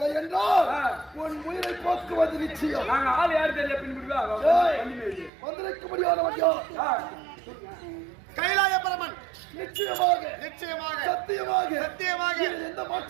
என்றால் உன் உயிரை போக்குவது நிச்சயம். நாங்க ஆள் யாரு தெரியல பின்புடுவா வந்திருக்க முடியாதவன் கைலாய பரமன் நிச்சயமாக சத்தியமாக எந்த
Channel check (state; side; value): drops out; left; at 5.3 s